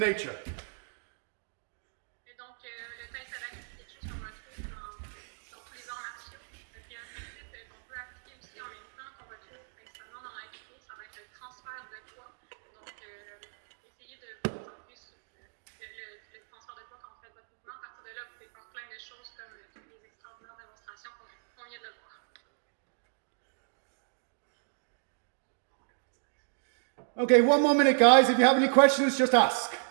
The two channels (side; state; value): left; silent; digital silence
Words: Et donc, le tai sabaki, c'est quelque chose qu'on retrouve dans tous les arts martiaux. Puis un principe qu'on peut appliquer aussi en même temps, qu'on retrouve principalement dans l'aïkido, ça va être le transfert de poids. Donc, essayez de vous concentrer sur le transfert de poids quand vous faites votre mouvement. À partir de là, vous pouvez faire plein de choses comme toutes les extraordinaires démonstrations qu'on vient de voir. Okay, one more minute, guys. If you have any questions, just ask.